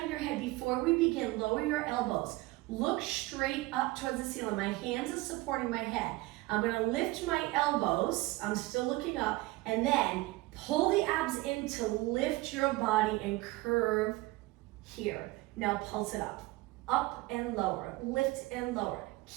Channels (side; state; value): left; quieter; 20.6 dB